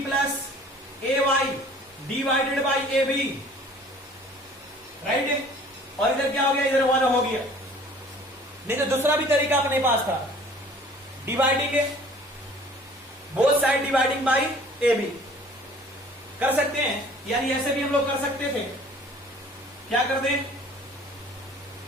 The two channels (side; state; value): both; normal; correlation 0.51